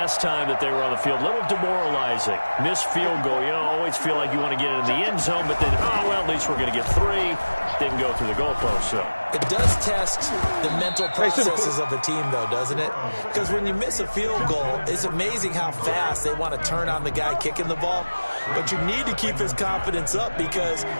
time that they were on the field, a little demoralizing. Missed field goal. You always feel like you want to get it in the end zone, but then, oh, well, at least we're going to get 3. Didn't go through the goalpost, so. It does test the mental processes of the team, though, doesn't it? Because when you miss a field goal, it's amazing how fast they want to turn on the guy kicking the ball. But you need to keep his confidence up, because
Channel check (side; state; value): both; inverted; correlation -1.00